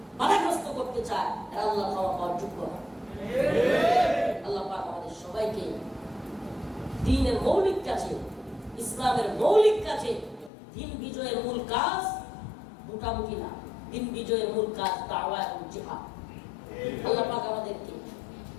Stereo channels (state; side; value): drops out; right; at 10.5 s